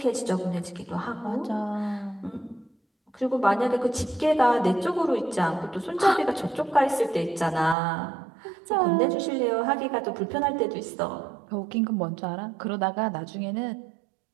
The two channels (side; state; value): left; drops out; at 7.8 s